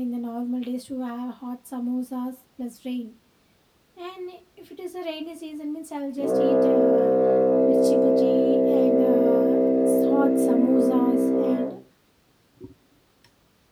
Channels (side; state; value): both; identical; correlation 1.00